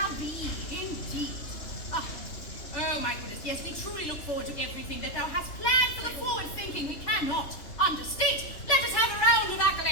be, indeed. Oh, my goodness, yes, we truly look forward to everything that thou hast planned for the forward thinking we cannot understate. Let us have a round of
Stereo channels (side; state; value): right; late; 3.3 ms